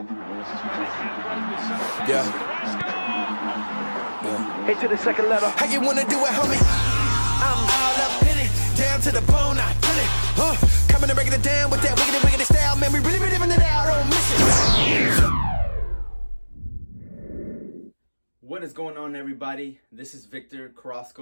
Into the second letter. How you wanna do it, homie? I'm all up in it, down to the bone, I kill it. Coming and breaking it down with that wiggity style, man. We really living it out, don't miss it. What is going on, everybody? This is Victor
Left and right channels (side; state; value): both; inverted; correlation -1.00